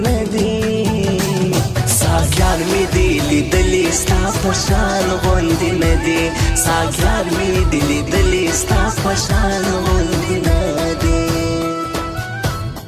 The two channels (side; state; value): both; identical; correlation 1.00